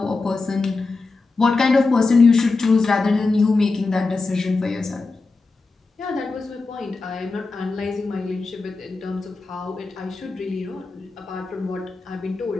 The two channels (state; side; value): quieter; right; 3.8 dB